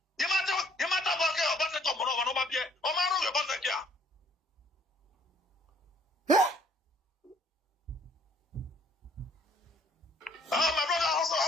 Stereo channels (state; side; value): normal; both; correlation 0.61